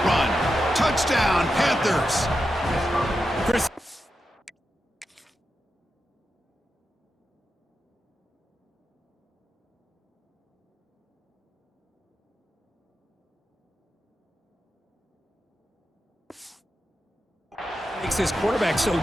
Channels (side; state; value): both; normal; correlation 0.88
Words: run. Touchdown, Panthers. Chris. Makes this quarterback so